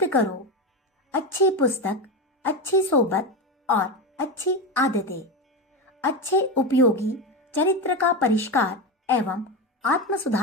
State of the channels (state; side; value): normal; both; correlation 0.17